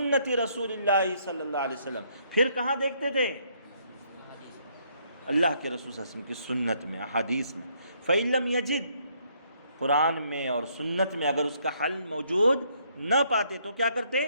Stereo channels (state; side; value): inverted; both; correlation -0.69